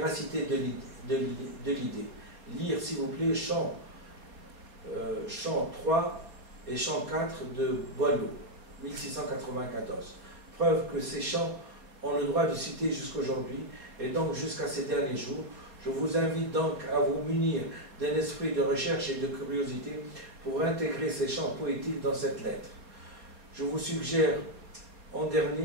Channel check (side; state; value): left; late; 4.2 ms